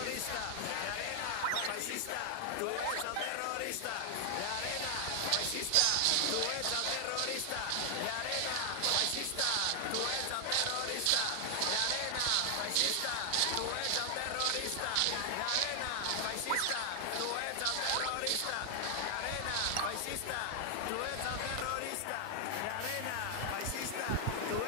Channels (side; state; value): both; different; correlation 0.00